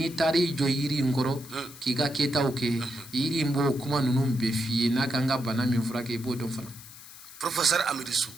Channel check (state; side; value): noise; left; hiss, 17 dB below the sound